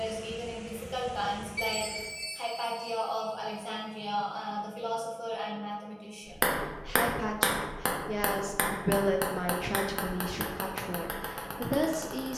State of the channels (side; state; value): both; identical; correlation 1.00